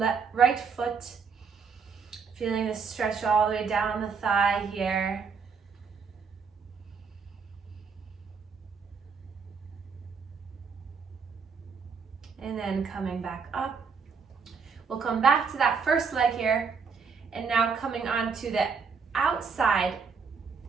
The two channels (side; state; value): left; quieter; 5.6 dB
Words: right foot, feeling the stretch all the way down the thigh here. And then coming back up. We'll come back to that first leg here, and now coming on to the outside